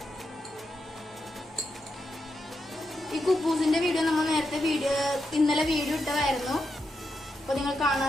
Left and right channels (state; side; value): normal; both; correlation 0.85